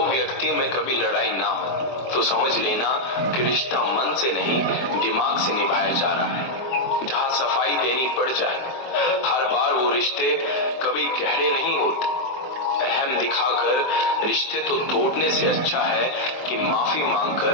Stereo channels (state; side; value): late; right; 23 ms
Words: व्यक्तियों में कभी लड़ाई ना हो तो समझ लेना कि रिश्ता मन से नहीं दिमाग से निभाया जा रहा है। जहां सफाई देनी पड़ जाए, हर बार वो रिश्ते कभी गहरे नहीं होते। अहम दिखाकर रिश्ते तो तोड़ने से अच्छा है कि माफी